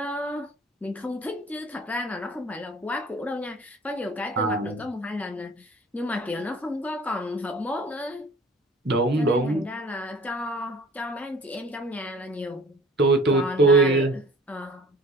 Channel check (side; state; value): both; normal; correlation 0.48